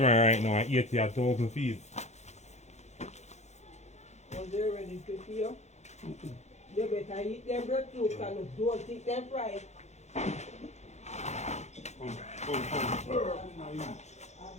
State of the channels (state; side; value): late; right; 0.33 ms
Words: right now at 80,000 feet. Was they ready to feel? You better eat them breadfruit and don't eat them fried. I